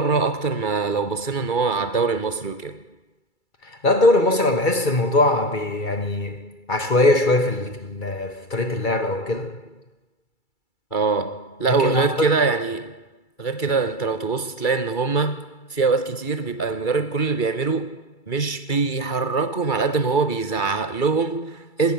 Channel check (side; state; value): right; late; 2.3 ms